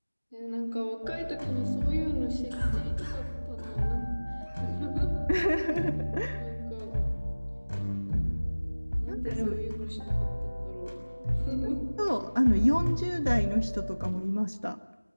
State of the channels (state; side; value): inverted; both; correlation -1.00